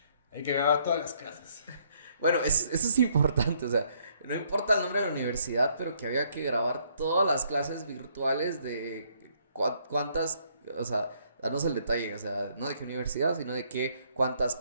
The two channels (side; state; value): both; inverted; correlation -0.68